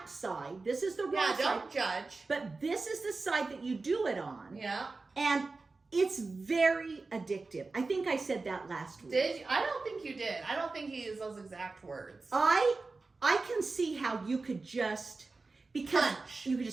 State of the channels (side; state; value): left; quieter; 3.8 dB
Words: side. This is the Yeah, right side. don't judge. But this is the side that you do it on. Yeah. And it's very addictive. I think I said that last week. Did you? I don't think you did. I don't think he used those exact words. I can see how you could just, because Punch. you could